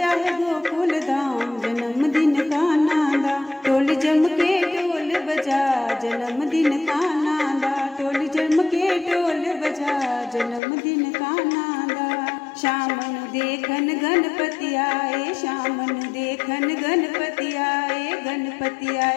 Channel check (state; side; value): drops out; right; at 10.6 s